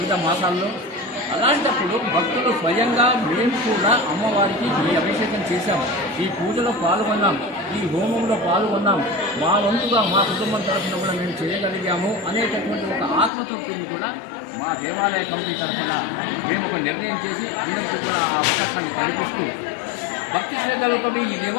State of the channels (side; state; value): right; drops out; at 13.3 s